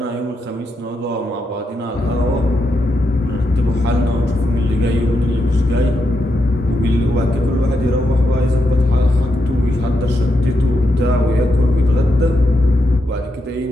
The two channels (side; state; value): both; normal; correlation 0.84